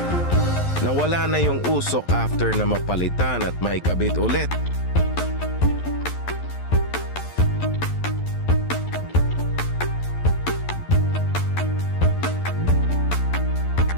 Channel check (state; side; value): late; right; 11 ms